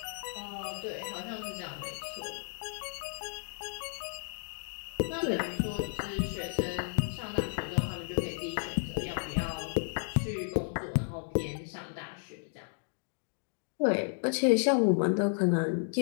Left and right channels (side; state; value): right; silent; digital silence